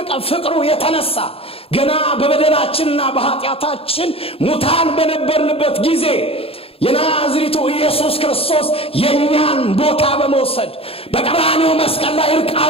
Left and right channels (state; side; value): late; right; 0.27 ms